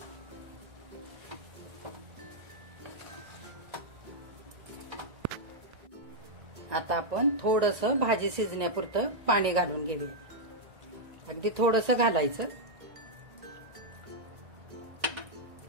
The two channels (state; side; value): late; left; 1.8 ms